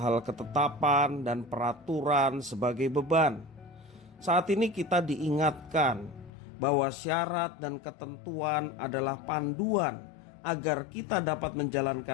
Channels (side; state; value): right; drops out; at 6.3 s